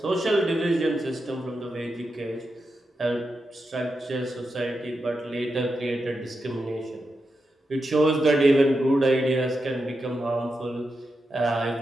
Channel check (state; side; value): normal; both; correlation 0.87